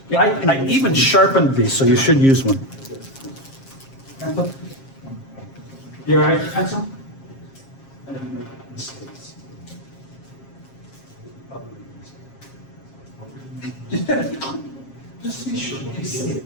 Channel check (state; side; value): late; right; 7.4 ms